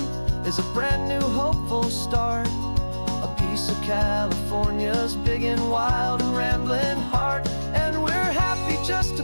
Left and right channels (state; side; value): inverted; both; correlation -1.00